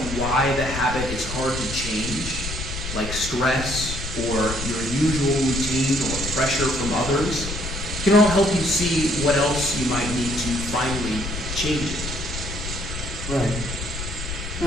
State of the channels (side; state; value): left; noise; rumble, 7 dB below the sound